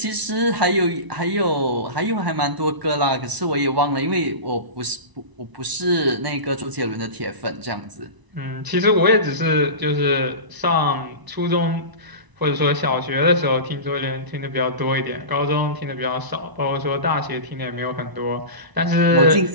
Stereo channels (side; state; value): left; late; 1.0 ms